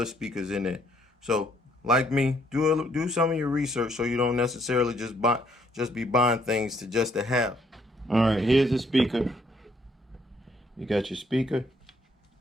speakers in there. So, like me, do some of your research so you don't necessarily just be buying things just to have. All right, here's the speaker. You got your speaker.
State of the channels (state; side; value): normal; both; correlation 0.68